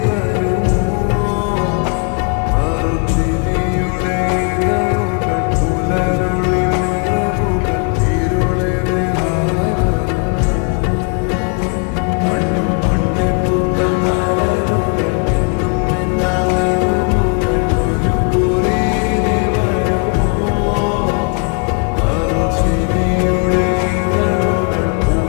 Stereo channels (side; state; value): right; quieter; 37.8 dB